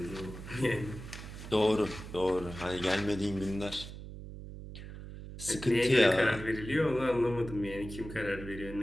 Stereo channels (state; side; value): noise; right; hum, 12 dB below the sound